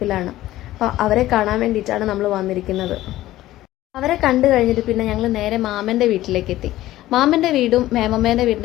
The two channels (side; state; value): right; quieter; 15.4 dB